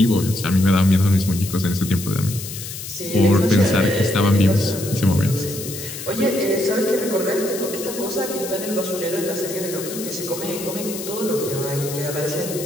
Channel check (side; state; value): left; noise; hiss, 9 dB below the sound